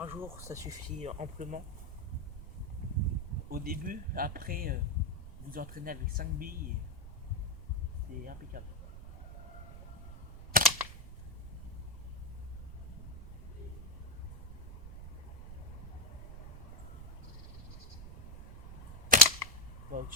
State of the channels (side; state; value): right; noise; rumble, 11 dB below the sound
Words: jour, ça suffit amplement. Au début, après, vous entraînez avec 5 billes et c'est impeccable. Bah,